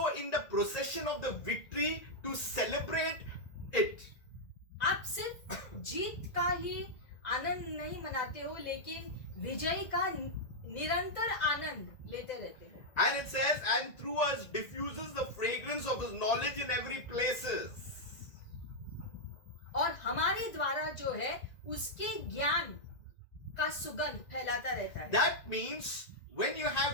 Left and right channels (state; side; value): late; right; 2.0 ms